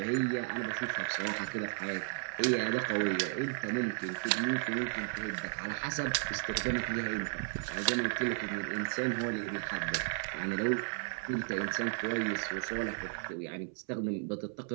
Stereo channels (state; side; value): silent; left; 55 dB below the other